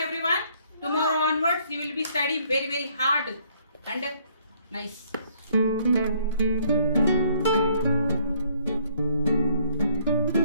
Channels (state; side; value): inverted; both; correlation -0.65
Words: Tomorrow onwards, you will be studying very very hard and nice.